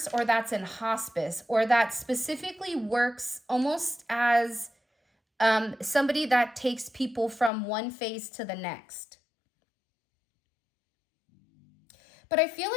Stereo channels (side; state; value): right; drops out; at 7.5 s